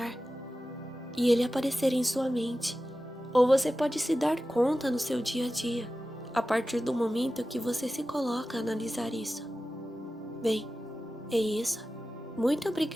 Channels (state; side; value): normal; both; correlation 0.94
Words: e ele aparecer em sua mente, ou você pode se dar conta no seu dia a dia, a partir do momento que você se coloca a analisar isso. Bem, é isso. Muito